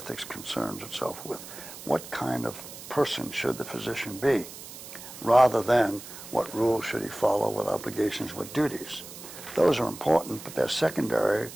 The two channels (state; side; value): noise; right; hiss, 14 dB below the sound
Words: concerns itself with. What kind of person should the physician be, rather than what rules should he follow, what obligations, what duties. Those are important, but they're secondary